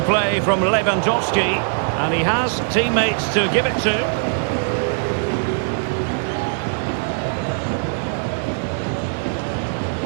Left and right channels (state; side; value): silent; left; digital silence